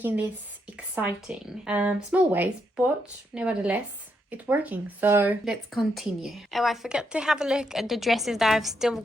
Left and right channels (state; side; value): normal; both; correlation 0.79